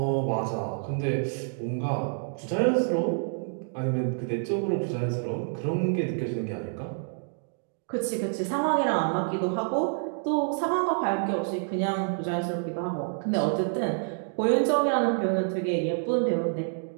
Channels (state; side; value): silent; left; digital silence